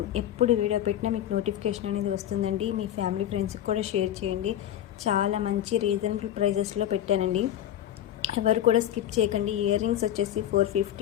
ఎప్పుడు వీడియో పెట్టినా మీకు నోటిఫికేషన్ అనేది వస్తుందండి. మీ ఫ్యామిలీ ఫ్రెండ్స్కి కూడా షేర్ చేయండి. చాలా మంచి రీజనబుల్ ప్రైజెస్లో పెట్టానండి, ఎవరు కూడా స్కిప్ చేయకండి. ఇయర్ రింగ్స్ వచ్చేసి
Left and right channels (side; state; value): right; quieter; 11.6 dB